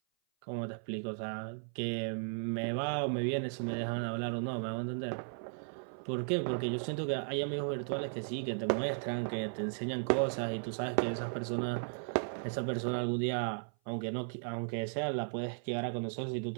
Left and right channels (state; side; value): silent; left; 54 dB below the other